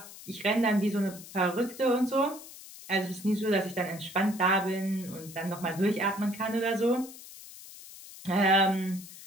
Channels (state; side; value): noise; left; hiss, 16 dB below the sound